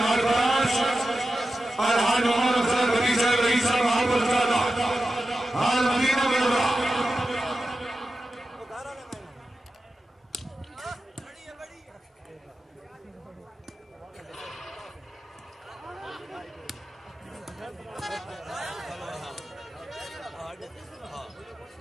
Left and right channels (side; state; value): both; normal; correlation 0.92